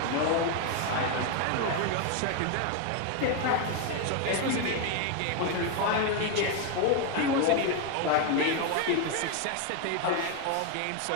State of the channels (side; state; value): both; different; correlation 0.01